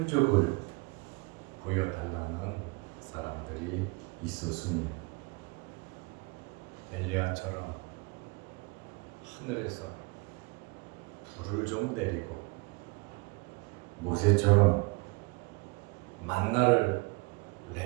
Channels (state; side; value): quieter; left; 26.8 dB